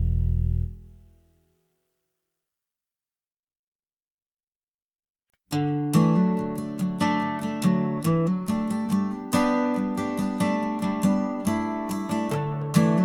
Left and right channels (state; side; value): identical; both; correlation 1.00